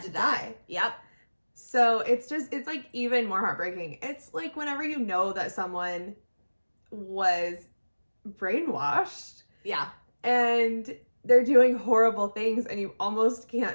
to die. Yep. So it's like even more heartbreaking. It's like whenever you know that someone was brainwashed Yeah. and they're doing horrible things, and you almost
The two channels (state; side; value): inverted; both; correlation -1.00